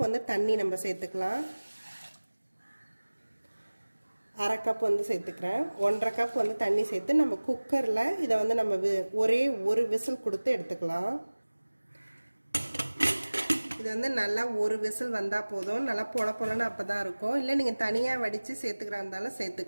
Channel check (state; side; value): inverted; both; correlation -1.00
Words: வந்து தண்ணி நம்ம சேர்த்துக்கலாம். 1/2 கப் வந்து சேர்த்துக்கிறேன். 1/2 கப் வந்து தண்ணி சேர்த்து நம்ம குக்கரில் இதை வந்து நம்ம ஒரே ஒரு விசில் கொடுத்து எடுத்துக்கலாம். இது வந்து நல்லா ஒரு விசில் வந்தால் போதும். நல்லா பொலன்னு அப்போ தான் இருக்கும். இல்லை நீங்கள் தனியாக வடித்து சேர்த்துக்கிறா இருந்தாலும்